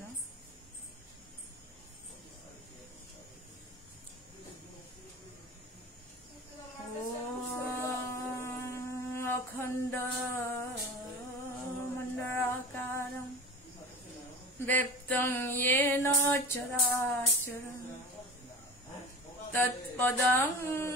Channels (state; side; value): normal; both; correlation 0.35